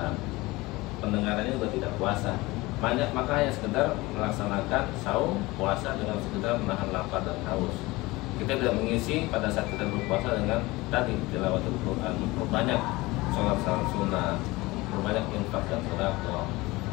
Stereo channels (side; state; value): right; quieter; 21.2 dB